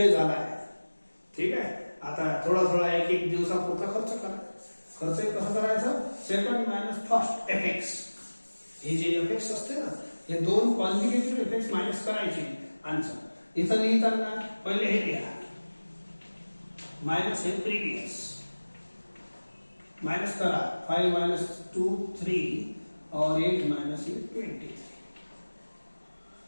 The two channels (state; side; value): inverted; both; correlation -1.00